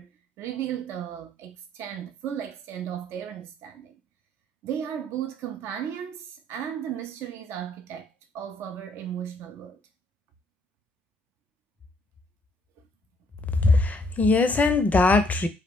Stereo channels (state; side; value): normal; both; correlation 0.66